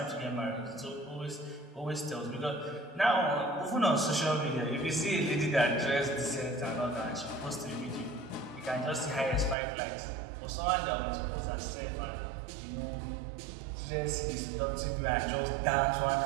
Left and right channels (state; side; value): drops out; left; at 9.6 s